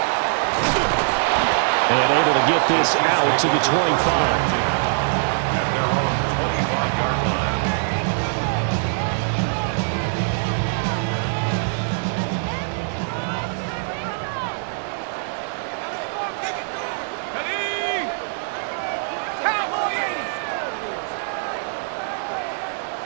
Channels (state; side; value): silent; left; 61 dB below the other